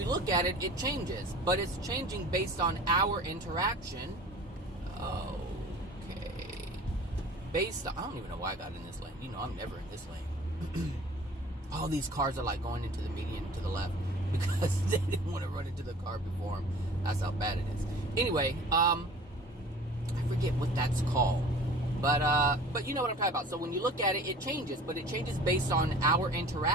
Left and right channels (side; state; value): both; normal; correlation 0.44